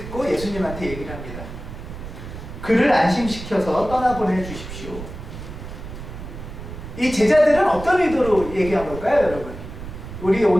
예수님한테 얘기를 합니다. 그를 안심시켜서 떠나보내 주십시오. 이 제자들은 어떤 의도로 얘기한 걸까요, 여러분? 우리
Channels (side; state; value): right; noise; rumble, 11 dB below the sound